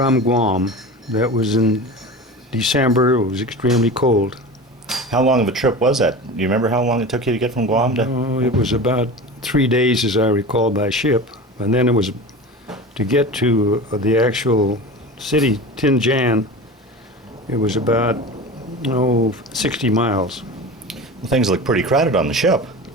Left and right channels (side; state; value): both; normal; correlation 0.31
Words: Guam. That was in December. It was extremely cold. How long of a trip was that? Do you remember how long it took you to get from Guam to? Oh, it was about 3 days, as I recall, by ship. And then it was to get to the actual city, Tianjin. It was about 60 miles. Well, things look pretty crowded on the ship.